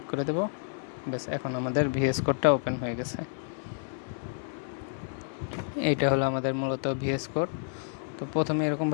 করে দেব। ব্যাস, এখন আমাদের ভিএস কোডটা ওপেন হয়ে গেছে। এইটা হলো আমাদের মূলত ভিএস কোড। তো প্রথমে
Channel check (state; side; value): silent; right; 58 dB below the other